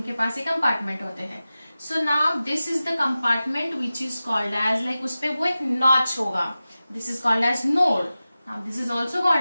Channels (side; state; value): both; inverted; correlation -0.95